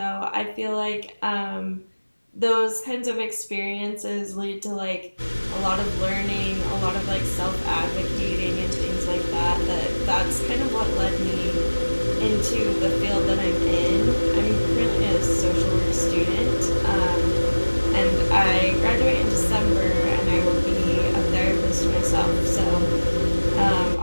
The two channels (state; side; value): inverted; both; correlation -1.00